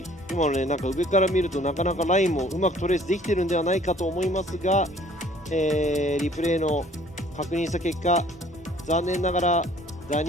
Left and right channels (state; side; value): normal; both; correlation 0.55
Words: 今のね、なんか上から見るとなかなかラインもうまくトレースできてるんではないかと思いますが、リプレイの確認した結果、残念ながらダ